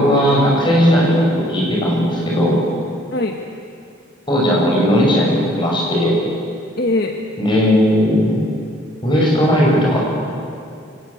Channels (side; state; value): both; normal; correlation 0.61